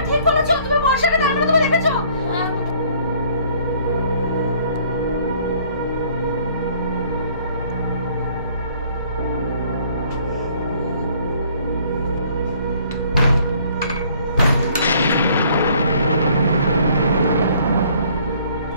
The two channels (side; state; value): both; inverted; correlation -0.59